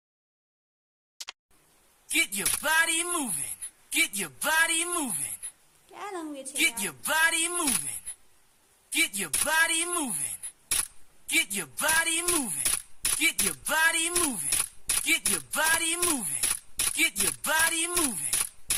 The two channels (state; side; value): identical; both; correlation 1.00